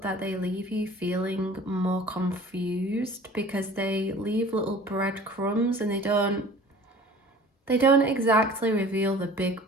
that they leave you feeling more confused because they leave little breadcrumbs and they don't exactly reveal the big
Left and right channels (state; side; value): normal; both; correlation 0.45